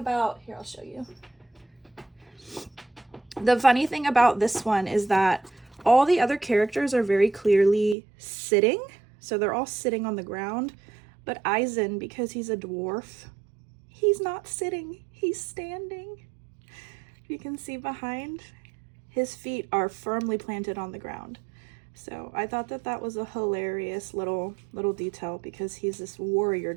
here, I'll show you. The funny thing about this one is that all the other characters are very clearly sitting. So they're all sitting on the ground. But Aizen, because he's a dwarf, he's not sitting, he's standing. You can see behind, his feet are firmly planted on the ground. So I thought that was a hilarious little detail, because he's this warrior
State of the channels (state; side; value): drops out; left; at 8.0 s